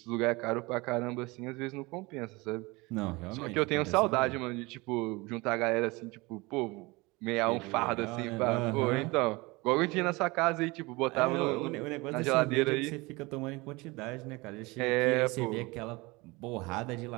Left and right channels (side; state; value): left; quieter; 24.1 dB